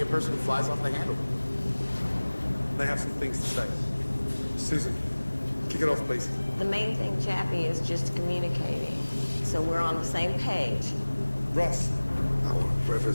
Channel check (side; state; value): both; inverted; correlation -1.00